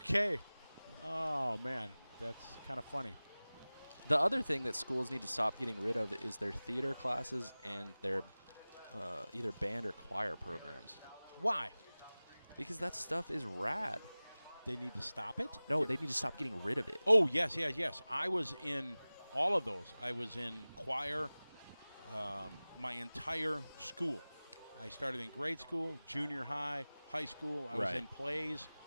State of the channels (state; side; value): inverted; both; correlation -0.99